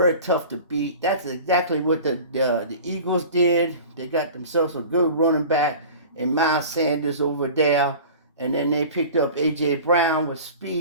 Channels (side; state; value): both; inverted; correlation -0.39